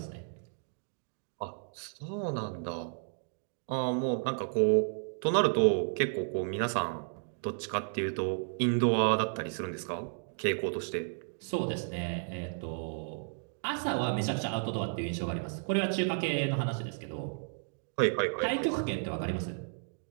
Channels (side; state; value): left; silent; digital silence